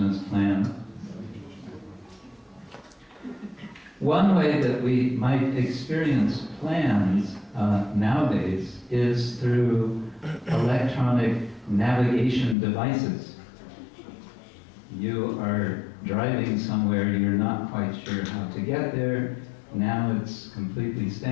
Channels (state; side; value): drops out; right; at 12.6 s